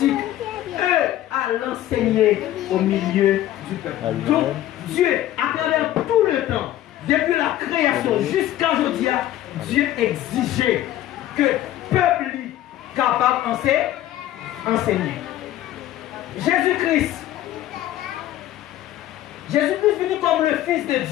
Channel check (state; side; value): quieter; right; 13.5 dB